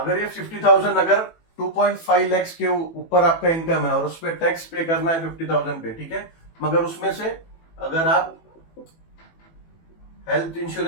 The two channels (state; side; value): late; right; 18 ms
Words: ये 50,000, अगर 2.5 लाख के ऊपर आपका इनकम है और उस पर टैक्स पे करना है 50,000 पे, ठीक है, मगर उसमें से अगर आप हेल्थ